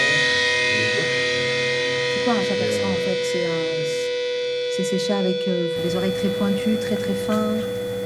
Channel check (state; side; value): identical; both; correlation 1.00